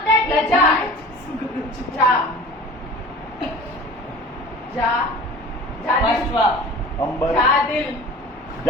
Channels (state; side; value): normal; both; correlation 0.41